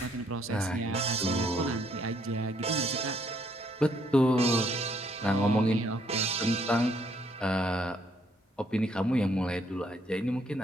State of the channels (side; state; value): both; normal; correlation 0.69